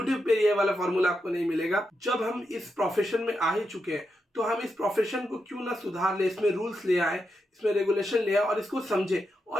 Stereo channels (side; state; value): both; normal; correlation 0.85